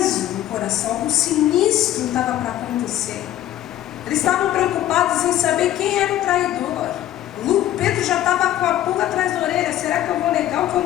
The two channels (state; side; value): quieter; right; 12.9 dB